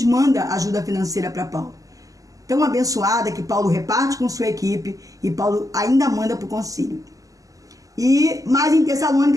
manda ajuda financeira para Paulo. Tão abençoada que Paulo reparte com sua equipe e Paulo ainda manda para o concílio. Mas em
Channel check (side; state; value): left; late; 0.17 ms